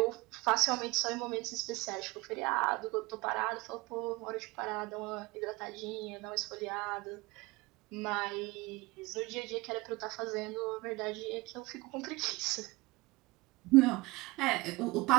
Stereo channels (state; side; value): quieter; left; 22.9 dB